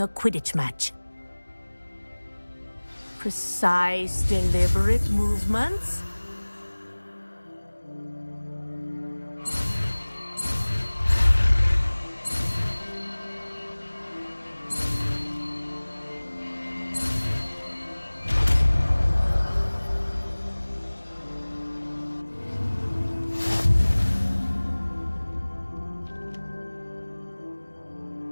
Quidditch match. Precise, deliberate movements.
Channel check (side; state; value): both; inverted; correlation -1.00